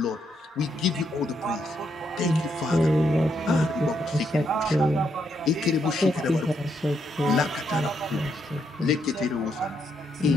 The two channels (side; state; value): both; normal; correlation 0.77